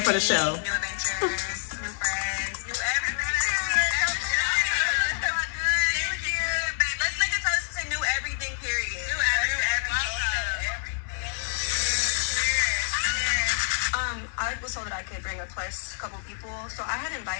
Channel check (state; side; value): silent; right; digital silence